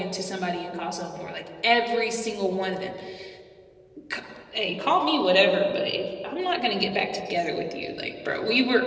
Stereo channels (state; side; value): identical; both; correlation 1.00